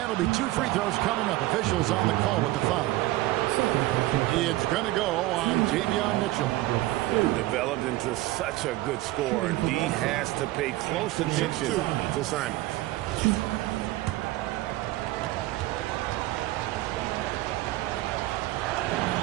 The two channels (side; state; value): left; quieter; 17.7 dB